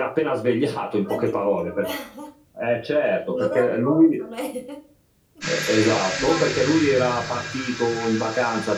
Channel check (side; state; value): both; identical; correlation 1.00